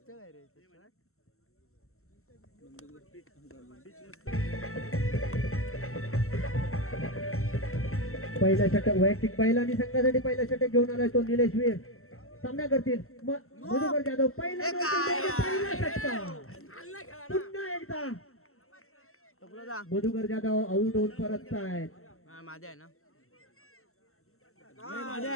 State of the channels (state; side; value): late; right; 0.63 ms